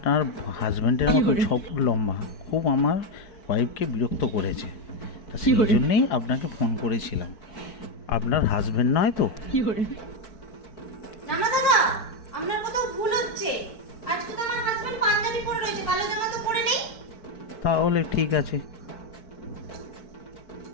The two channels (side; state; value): right; late; 4.6 ms